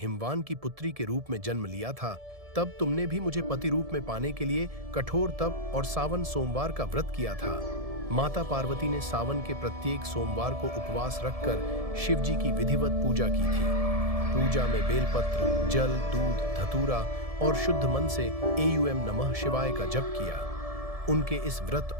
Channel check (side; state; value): left; late; 1.7 ms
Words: हिमवान की पुत्री के रूप में जन्म लिया था, तब तुमने भी मुझे पति रूप में पाने के लिए कठोर तप और सावन सोमवार का व्रत किया था। माता पार्वती ने सावन के प्रत्येक सोमवार को उपवास रखकर शिव जी की विधिवत पूजा की थी। पूजा में बेलपत्र, जल, दूध, धतूरा और शुद्ध मन से एयूएम नमः शिवाय का जप किया। उनके इस व्रत